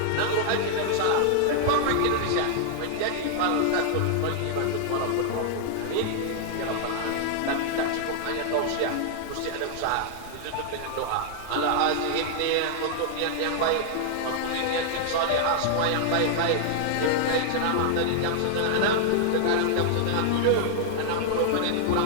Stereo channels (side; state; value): both; different; correlation 0.00